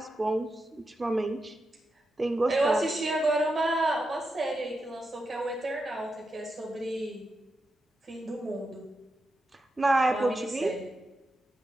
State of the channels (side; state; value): both; normal; correlation 0.87